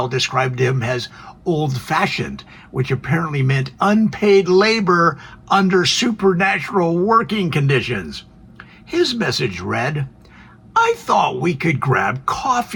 described him as old-fashioned, which apparently meant unpaid labor under supernatural working conditions. His message read, "I thought we could grab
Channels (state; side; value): identical; both; correlation 1.00